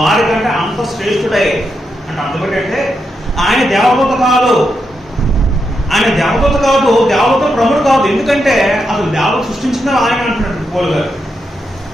కంటే అంత శ్రేష్ఠుడై అంటే అందుకంటే ఆయన దేవదూత కాదు, ఆయన దేవదూత కాదు, దేవదూత ప్రముఖుడు కాదు. ఎందుకంటే అసలు దేవత సృష్టించిన ఆయన అంటున్నాడు పౌలు గారు.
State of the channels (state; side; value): normal; both; correlation 0.84